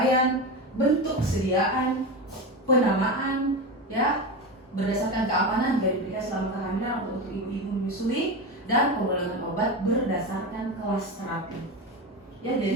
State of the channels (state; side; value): normal; both; correlation 0.21